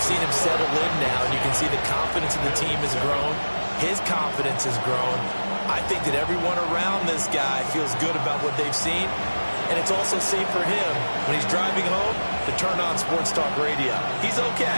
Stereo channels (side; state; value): both; inverted; correlation -1.00